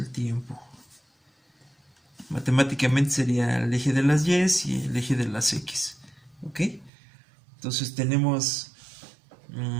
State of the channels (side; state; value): left; drops out; at 6.9 s